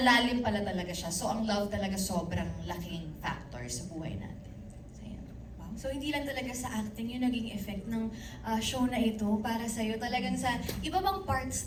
pala talaga siya. So ang love talaga sobrang laking factor sa buhay natin. So, yun. Wow. So hindi lang talaga sa acting yung naging effect ng show na ito para sa'yo. Talagang sa iba bang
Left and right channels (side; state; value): both; identical; correlation 1.00